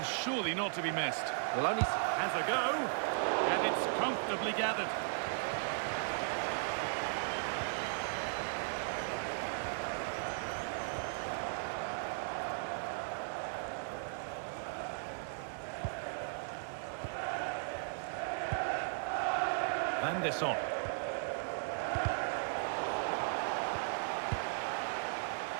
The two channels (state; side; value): silent; left; digital silence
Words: surely not to be missed. Well, only has a go, and it's comfortably gathered. Van der Son.